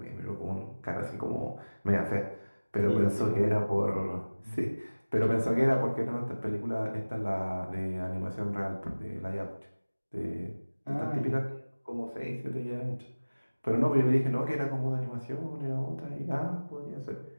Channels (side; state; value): both; inverted; correlation -1.00